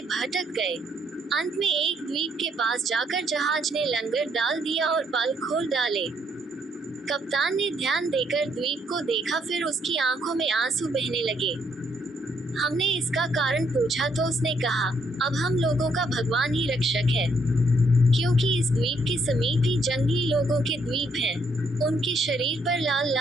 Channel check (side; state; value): both; normal; correlation 0.72